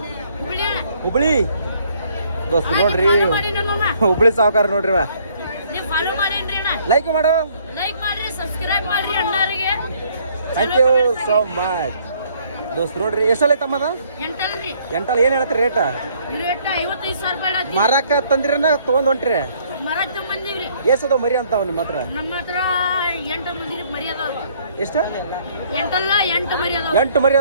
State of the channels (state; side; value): inverted; both; correlation -0.63